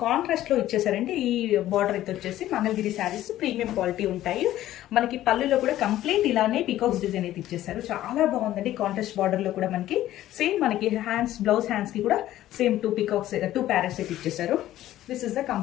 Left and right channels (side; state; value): right; quieter; 13.8 dB